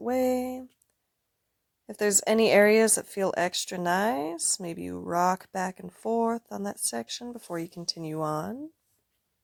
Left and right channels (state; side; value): identical; both; correlation 1.00